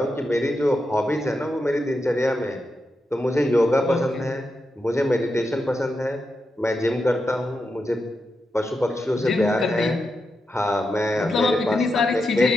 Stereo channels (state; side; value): normal; both; correlation 0.87